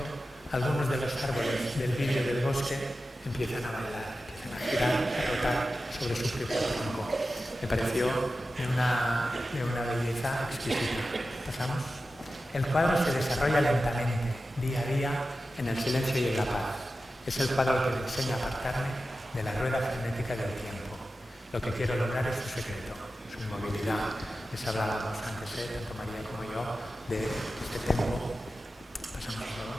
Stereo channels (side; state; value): both; normal; correlation 0.93